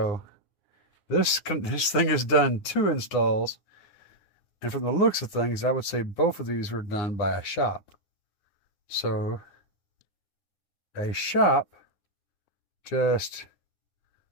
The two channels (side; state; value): right; late; 9.7 ms